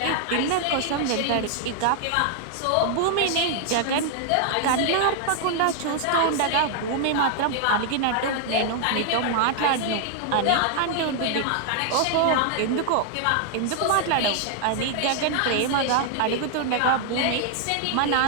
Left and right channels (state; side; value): different; both; correlation 0.00